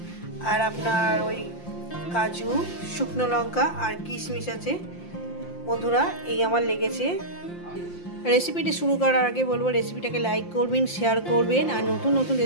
আর আপনার ওই কাজু, শুকনো লঙ্কা আর কিশমিশ আছে। বন্ধুরা, এই আমার লেগেছে। রেসিপিটি শুরু করার আগে বলবো, রেসিপিটাকে লাইক করবেন, শেয়ার করবেন, আর নতুন নতুন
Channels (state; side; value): late; right; 5.7 ms